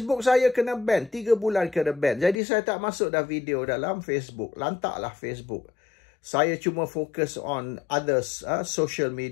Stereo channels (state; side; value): drops out; right; at 2.4 s